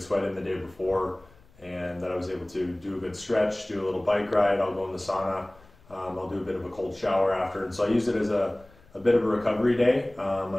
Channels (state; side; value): noise; left; rumble, 27 dB below the sound